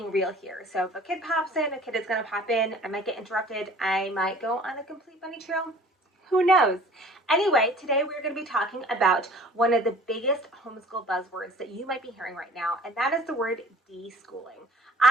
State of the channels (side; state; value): both; normal; correlation 0.48